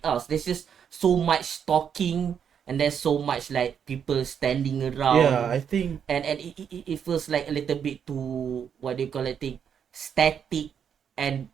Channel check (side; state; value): left; quieter; 7.8 dB